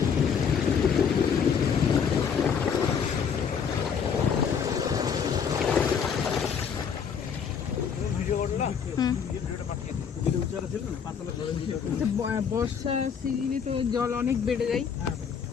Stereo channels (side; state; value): right; quieter; 6.9 dB